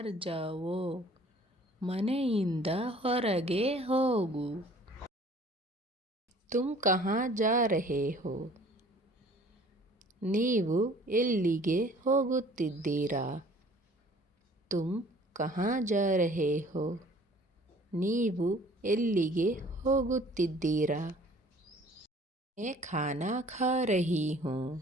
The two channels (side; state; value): both; normal; correlation 0.52